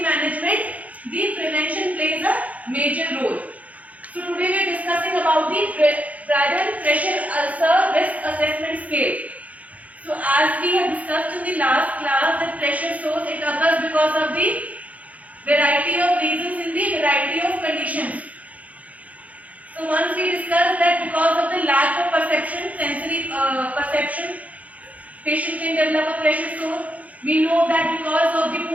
management, the prevention plays a major role. So today we are discussing about the Braden pressure ulcer risk assessment scale. So as we have discussed in the last class, the pressure source it occurs because of the variety of reasons in the variety of conditions. So once we discussed that because of the lack of perception, sensory perception, patient can develop a pressure sore. We know that because of the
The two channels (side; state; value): left; late; 0.070 ms